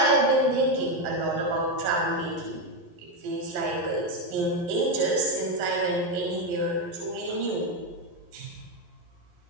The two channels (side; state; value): left; late; 11 ms